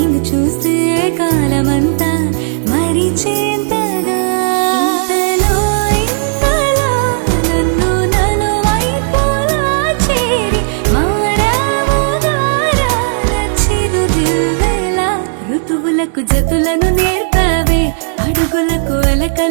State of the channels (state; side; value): silent; left; digital silence